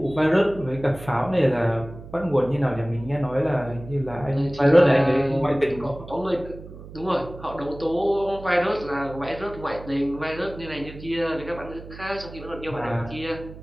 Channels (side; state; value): right; noise; hum, 15 dB below the sound